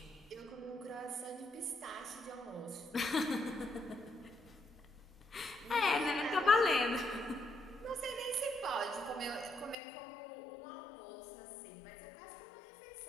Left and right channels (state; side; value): drops out; right; at 9.8 s